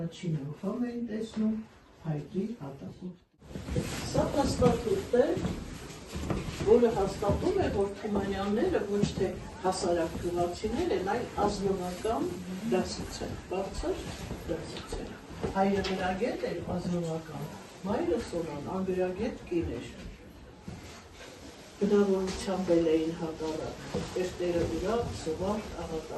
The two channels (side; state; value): both; identical; correlation 1.00